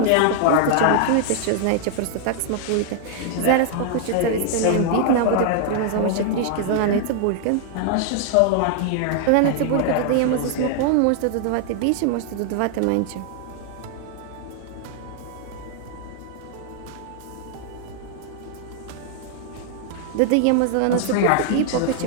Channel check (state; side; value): different; both; correlation 0.00